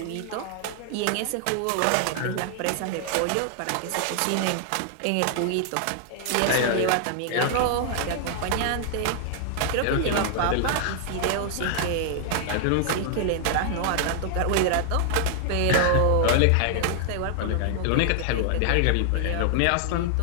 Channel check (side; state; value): both; different; correlation 0.00